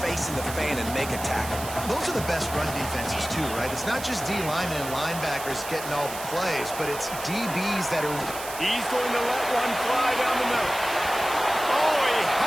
face in the fan, and make a tackle? Those are the best run defenses, too, right? It's not just D linemen and linebackers getting all the plays, but it's DBs that are... He's going to let one fly down the middle. Oh, he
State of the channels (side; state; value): right; noise; hiss, 10 dB below the sound